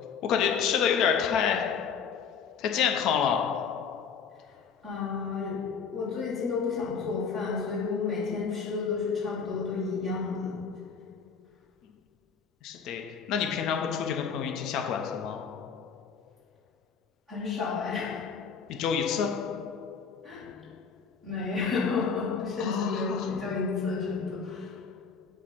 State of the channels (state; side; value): quieter; right; 6.1 dB